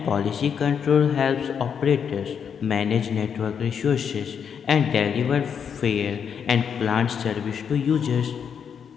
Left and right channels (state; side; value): quieter; right; 7.3 dB